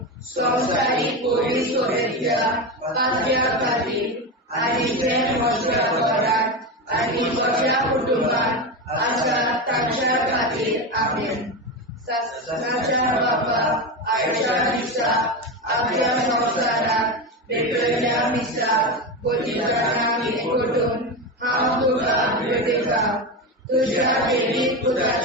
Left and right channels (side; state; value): both; normal; correlation 0.17